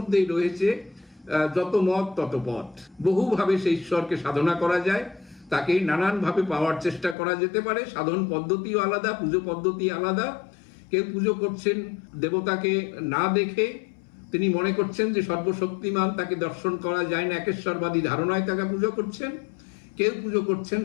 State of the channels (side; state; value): right; drops out; at 7.2 s